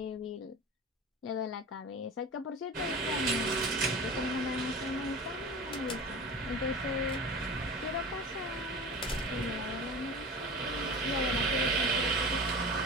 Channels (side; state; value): both; normal; correlation 0.33